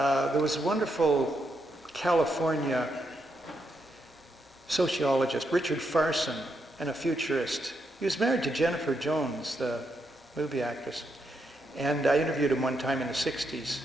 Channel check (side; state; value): both; normal; correlation 0.81